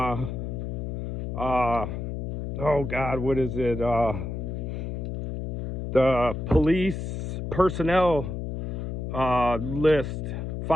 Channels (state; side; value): noise; left; hum, 4 dB below the sound